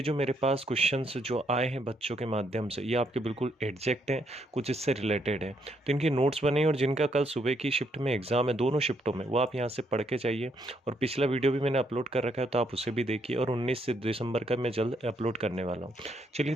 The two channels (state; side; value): normal; both; correlation 0.73